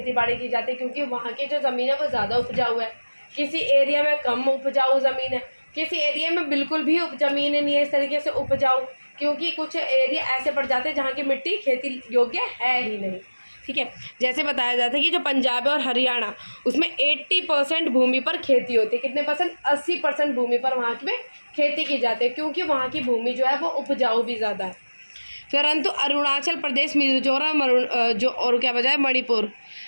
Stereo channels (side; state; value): both; inverted; correlation -1.00